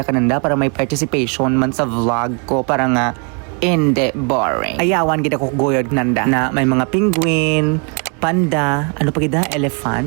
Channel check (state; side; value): quieter; left; 36.5 dB